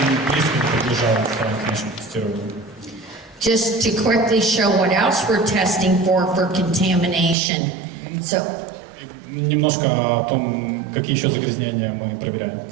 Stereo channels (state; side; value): drops out; left; at 7.4 s